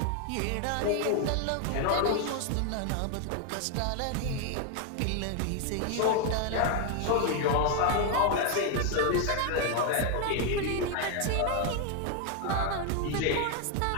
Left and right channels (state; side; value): different; both; correlation 0.01